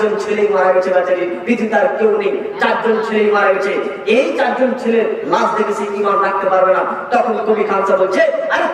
ছেলেই মারা গেছে বেচারি, পৃথিবীতে আর কেউ নেই, 4 জন ছেলেই মারা গেছে। এই 4 জন ছেলে লাশ দেখে সে ঈমান রাখতে পারবে না। তখন কবি খানসা বলছে, আরে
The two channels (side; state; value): both; identical; correlation 1.00